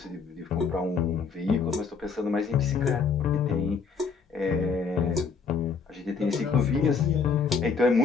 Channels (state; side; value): quieter; right; 5.5 dB